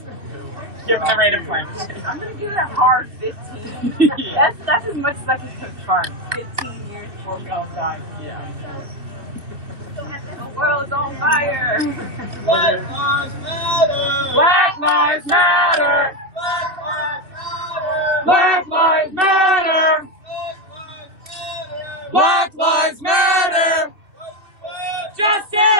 Given the rate of climate change. I'm going to give it a hard 15. Yeah. That's as much as I can confirm. 15 years before we all die. Yeah. The world's on fire. Black lives matter. Black lives matter. Black lives matter. Black lives matter.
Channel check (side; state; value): left; late; 2.6 ms